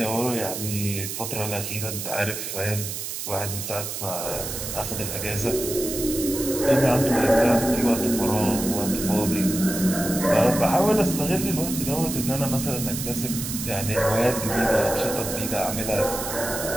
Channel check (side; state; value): right; noise; hiss, 6 dB below the sound